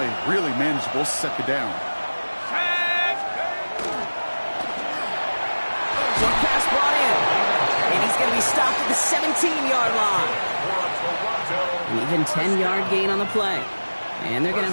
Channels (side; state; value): both; inverted; correlation -1.00